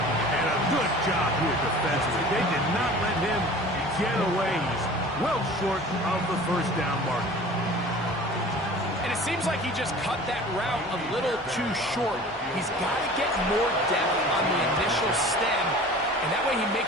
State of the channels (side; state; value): both; normal; correlation 0.42